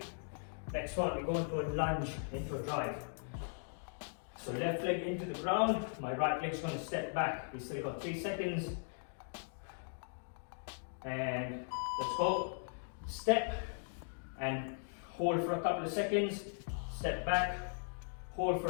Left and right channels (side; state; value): right; silent; digital silence